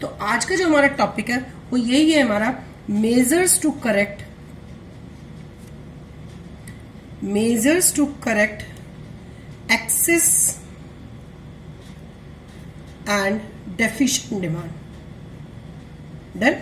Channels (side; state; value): both; identical; correlation 1.00